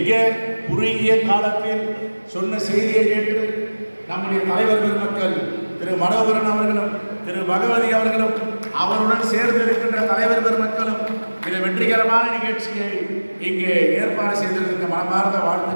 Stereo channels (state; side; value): inverted; both; correlation -1.00